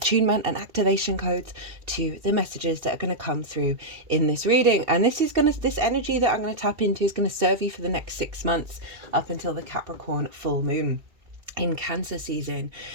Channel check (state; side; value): late; left; 2.7 ms